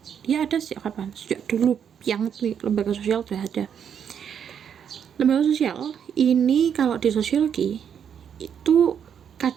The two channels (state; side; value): quieter; left; 8.1 dB